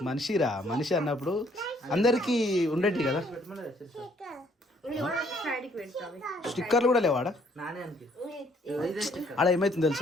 మనిషిరా మనిషి అన్నప్పుడు అందరికి ఉండేటి కదా. స్టిక్కర్లు కూడా లేవాడా ఆడ ఏమైతుంది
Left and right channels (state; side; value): normal; both; correlation 0.64